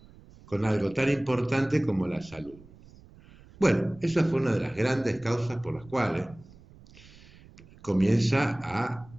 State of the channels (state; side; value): noise; right; rumble, 23 dB below the sound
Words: con algo tan importante como la salud. Bueno, esa fue una de las grandes causas por las cuales comienza a